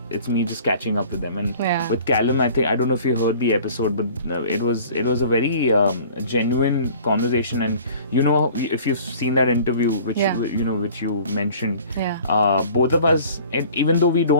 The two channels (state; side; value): inverted; both; correlation -0.48